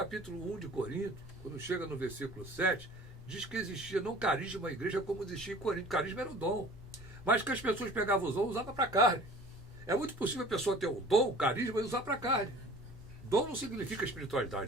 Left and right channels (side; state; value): both; normal; correlation 0.46